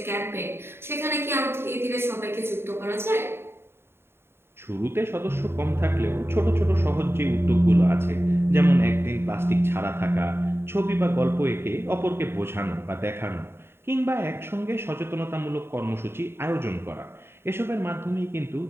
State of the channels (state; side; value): late; left; 0.11 ms